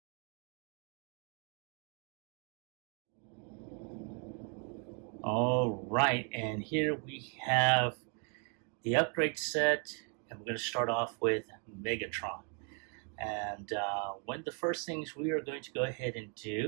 All right, and here we have the upgrade set, and we're going to start off with Megatron. And one of the first things we are going to go ahead and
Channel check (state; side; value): quieter; left; 37.8 dB